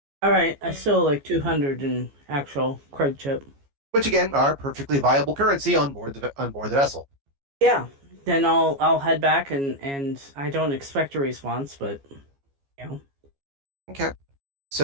All right. I still like 200 in actual credit chip. Which again are perfectly viable currency on board the vessel. Yeah. Then I'll head back and I don't expect a response, but Okay.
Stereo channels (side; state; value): left; late; 14 ms